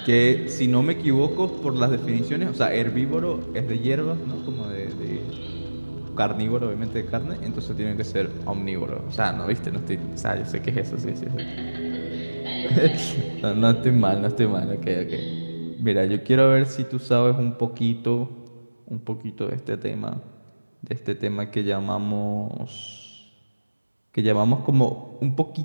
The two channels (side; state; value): both; inverted; correlation -1.00